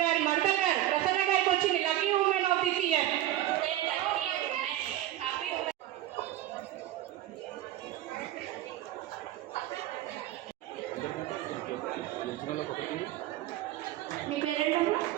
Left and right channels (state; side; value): quieter; left; 13.8 dB